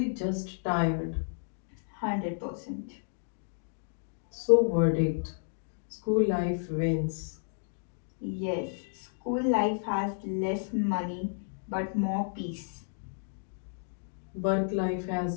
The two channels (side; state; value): right; silent; digital silence